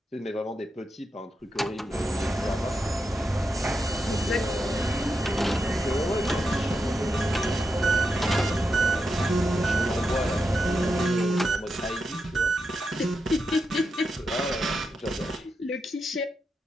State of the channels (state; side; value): normal; both; correlation 0.86